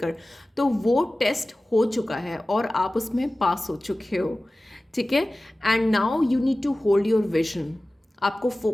तो वो टेस्ट हो चुका है और आप उसमें पास हो चुके हो. ठीक है, and now you need to hold your vision. आपको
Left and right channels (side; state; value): both; normal; correlation 0.97